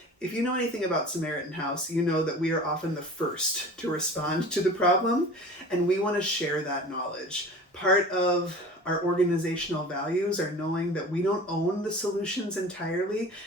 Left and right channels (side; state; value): both; normal; correlation 0.39